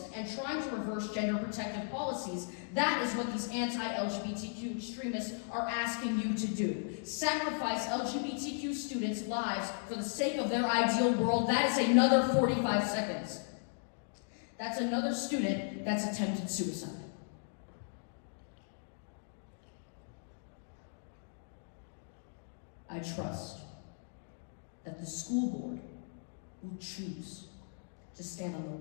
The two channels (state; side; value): silent; right; digital silence